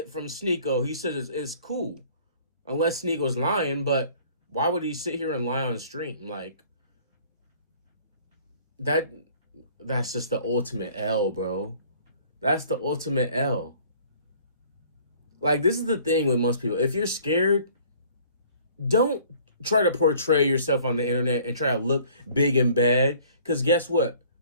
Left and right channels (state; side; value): inverted; both; correlation -0.54